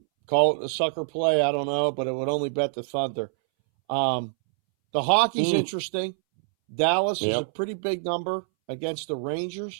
call it a sucker play. I don't know, but it would only bet the Thunder. The hockey's interesting. Dallas is a pretty big number against the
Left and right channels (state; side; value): silent; left; 61 dB below the other